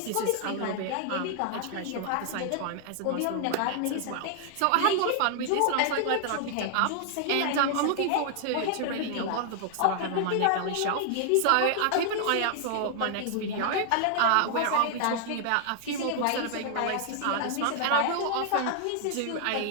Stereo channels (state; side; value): different; both; correlation 0.00